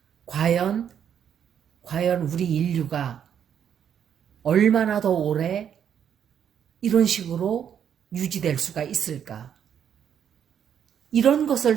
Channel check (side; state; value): left; quieter; 8.7 dB